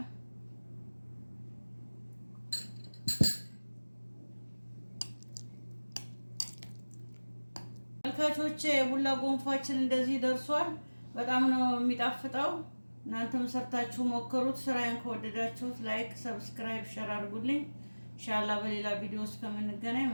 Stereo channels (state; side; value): inverted; both; correlation -1.00